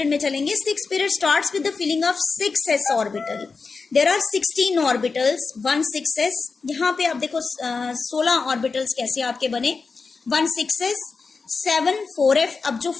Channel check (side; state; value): right; quieter; 4.6 dB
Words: में चलेंगे। Sixth period starts with the filling of 6s orbital. There are 16 orbitals, 1 6s। यहाँ पे आप देखो 16 ऑर्बिटल्स कैसे आपके बने, 1 6s, 7 4F। अब जो